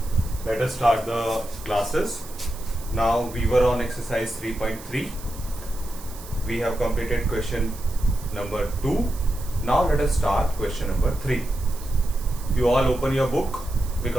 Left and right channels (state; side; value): noise; right; hiss, 17 dB below the sound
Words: let us start the classes. Now we were on exercise 3.3. We have completed question number 2. Now let us start question number 3. You all open your book